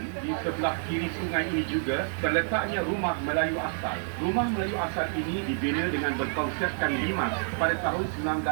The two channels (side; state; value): left; silent; digital silence